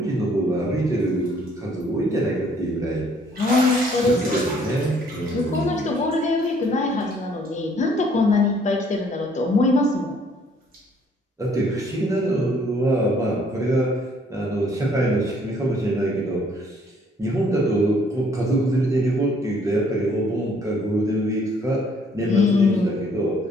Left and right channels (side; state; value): both; normal; correlation 0.62